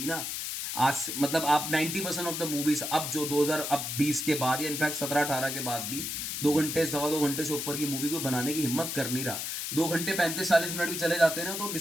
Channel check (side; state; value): left; noise; hiss, 4 dB below the sound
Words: ना, आज मतलब आप 90% ऑफ द मूवीज अब जो 2020 के बाद या इनफैक्ट 17 18 के बाद भी 2 घंटे 2.25 घंटे से ऊपर की मूवी को बनाने की हिम्मत कर नहीं रहा। 2 घंटे 35 40 मिनट भी चले जाते हैं ना, तो